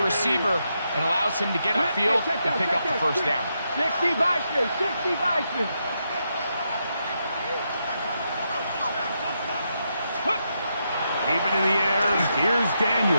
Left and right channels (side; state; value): both; inverted; correlation -0.82